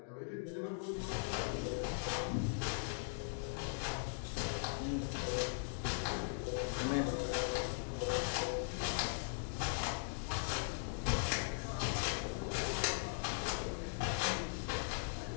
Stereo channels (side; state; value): right; silent; digital silence